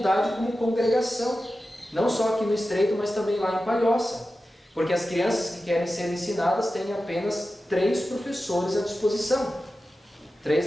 como congregação, não só aqui no Estreito, mas também lá em Palhoça, porque as crianças que querem ser ensinadas têm apenas 3 professores à disposição, 3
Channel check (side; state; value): both; normal; correlation 0.93